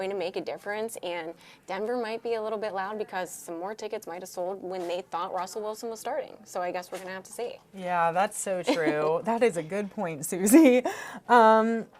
to make a difference, and Denver might be a little bit loud because some more tickets might have sold when they thought Russell Wilson was starting. So I guess we're going to have to see. Yeah, that's so true. That is a good point, Suzie.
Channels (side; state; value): both; identical; correlation 1.00